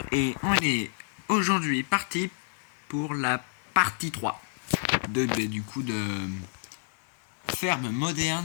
et on est aujourd'hui parti pour la partie 3 de Ferme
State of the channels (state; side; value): silent; right; digital silence